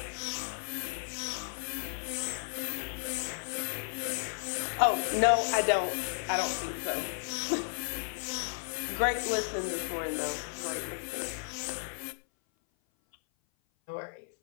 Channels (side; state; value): right; silent; 55 dB below the other